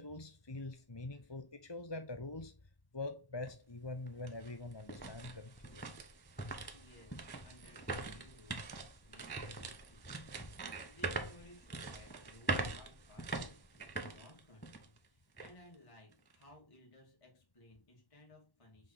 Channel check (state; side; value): late; right; 1.1 ms